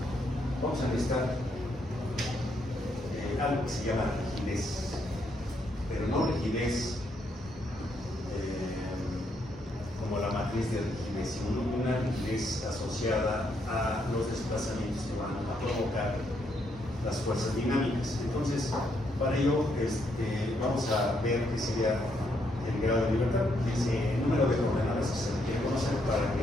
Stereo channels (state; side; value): normal; both; correlation 0.75